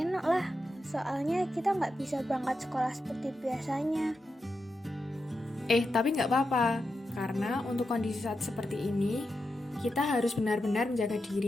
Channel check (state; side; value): normal; both; correlation 0.88